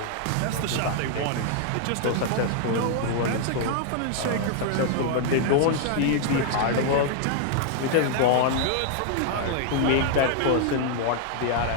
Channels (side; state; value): both; different; correlation 0.00